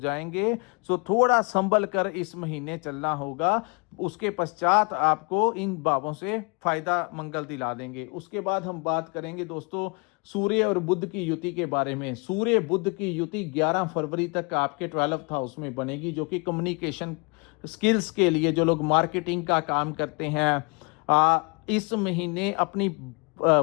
सो थोड़ा संभल कर इस महीने चलना होगा। उसके पश्चात आपको इन भावों से फायदा मंगल दिला देंगे। उसके बाद हम बात करेंगे दोस्तों सूर्य और बुध की युति के बारे में। सूर्य बुध की युति 11 फरवरी तक आपके 12th हाउस में बनेगी, जो कि कम्युनिकेशन स्किल्स के लिए, जो लोग मार्केटिंग का काम करते हैं, इस महीने अपनी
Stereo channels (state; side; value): quieter; right; 32.7 dB